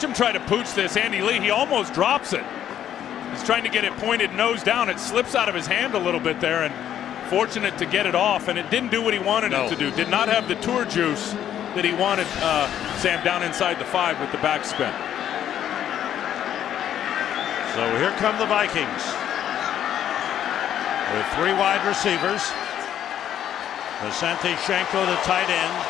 him try to pooch this. Andy Lee, he almost drops it. He's trying to get it pointed nose down. It slips out of his hand a little bit there, and fortunate to get it off, and it didn't do what he wanted it to do. Did not have the tour juice that he wanted, Sam, down inside the 5 with the backspin. So here come the Vikings with 3 wide receivers. Asante Shenko, the tight end,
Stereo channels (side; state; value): right; quieter; 10.5 dB